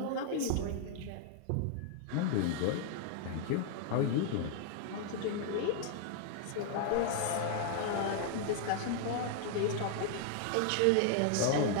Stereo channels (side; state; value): both; different; correlation 0.00